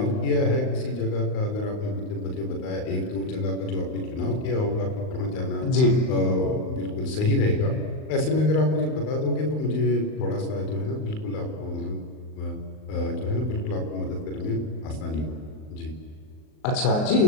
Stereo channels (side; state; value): right; late; 38 ms